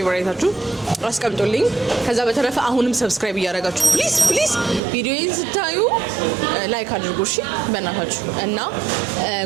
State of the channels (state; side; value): drops out; left; at 4.8 s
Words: አስቀምጡልኝ። ከዛ በተረፈ አሁንም ሰብስክራይብ እያደረጋችሁ ፕሊዝ ቪዲዮዬን ስታዩ ላይክ አድርጉ እሺ በእናታችሁ። እና